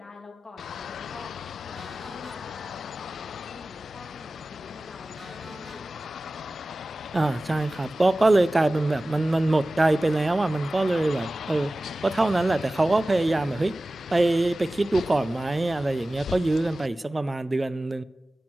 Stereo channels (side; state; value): both; normal; correlation 0.96